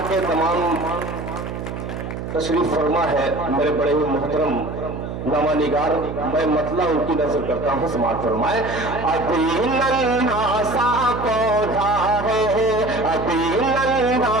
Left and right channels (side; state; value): right; noise; hum, 7 dB below the sound